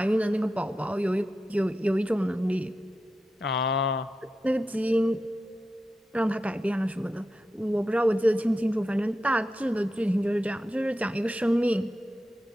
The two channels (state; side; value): normal; both; correlation 0.90